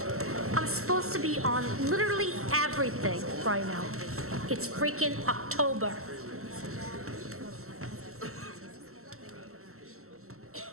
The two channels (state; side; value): late; left; 0.63 ms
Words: I'm supposed to be on literally everything right now. It's freaking October.